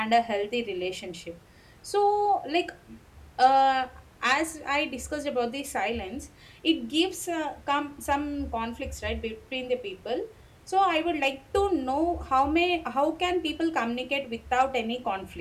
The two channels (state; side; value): identical; both; correlation 1.00